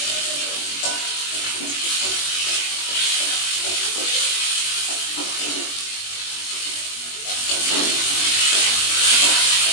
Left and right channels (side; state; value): right; late; 21 ms